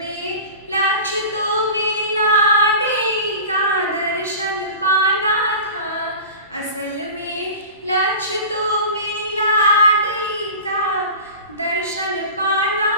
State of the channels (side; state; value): both; inverted; correlation -0.35